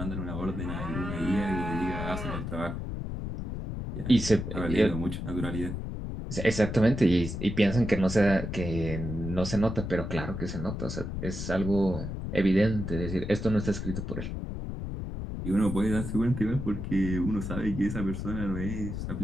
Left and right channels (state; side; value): noise; left; rumble, 5 dB below the sound